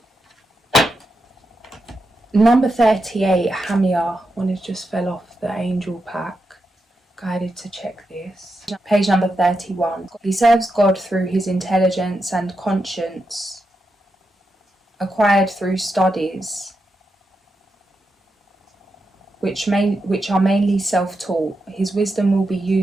Number 38, Hamia. One has just fell off the angel pack. Guided to check this. Page number 31. He serves God through his intelligence and conscience, acquired through studies, which are mainly self-taught. His wisdom will be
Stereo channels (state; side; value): normal; both; correlation 0.86